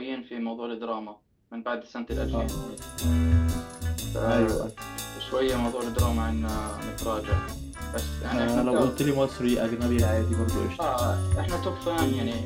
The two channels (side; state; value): both; identical; correlation 1.00